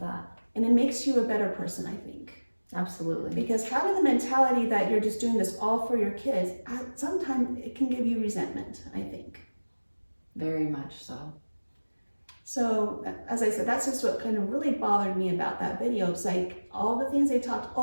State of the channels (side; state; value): both; inverted; correlation -1.00